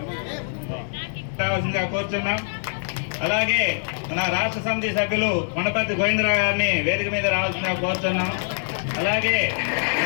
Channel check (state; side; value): silent; right; digital silence